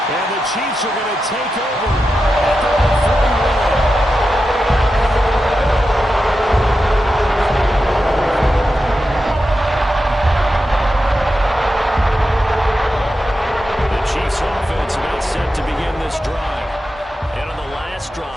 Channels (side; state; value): both; normal; correlation 0.90